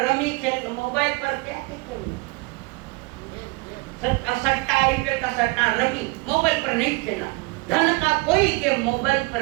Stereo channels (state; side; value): quieter; left; 25.4 dB